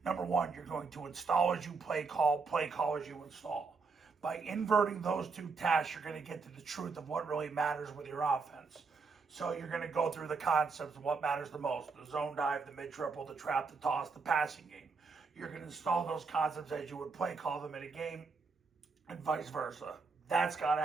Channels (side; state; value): left; quieter; 4.6 dB